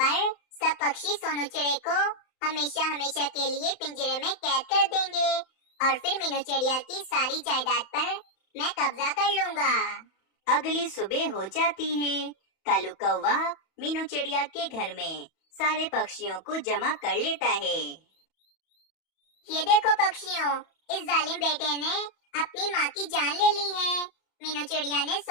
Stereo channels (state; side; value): late; right; 31 ms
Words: पर सब पक्षी सोनू चिड़े को हमेशा हमेशा के लिए पिंजरे में कैद कर देंगे और फिर मीनू चिड़िया की सारी जायदाद पर मैं कब्जा कर लूंगा। अगली सुबह हो जाती है। कालू कौवा मीनू चिड़िया के घर में सारे पक्षियों को जमा कर लेता है। ये देखो पक्षियों, इस जालिम बेटे ने अपनी माँ की जान ले ली है। मीनू चिड़िया ने